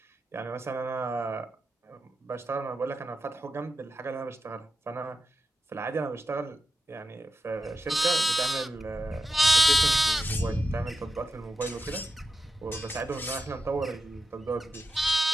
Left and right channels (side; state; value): both; normal; correlation 0.88